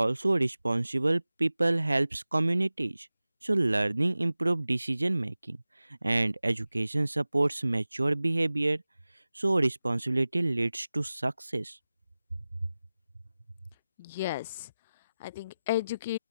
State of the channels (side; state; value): both; inverted; correlation -0.96